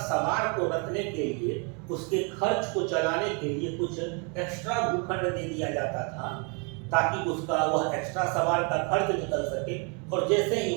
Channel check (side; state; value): left; quieter; 35.1 dB